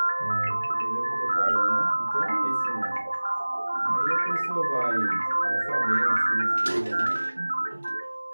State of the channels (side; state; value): both; inverted; correlation -1.00